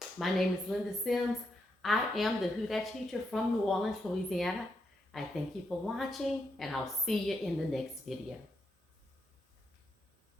My name is Linda Sims. I am the Who Dat teacher from New Orleans, Louisiana. I thank you for watching, and I'll see you in the next video.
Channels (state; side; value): normal; both; correlation 0.82